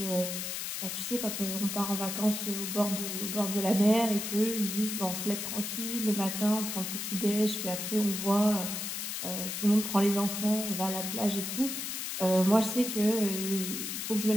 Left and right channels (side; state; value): left; noise; hiss, 4 dB below the sound